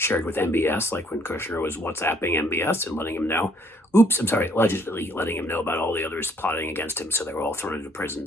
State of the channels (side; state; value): both; normal; correlation 0.64